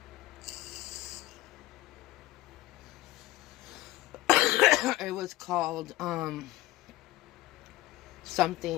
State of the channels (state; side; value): quieter; right; 17.5 dB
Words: It was called,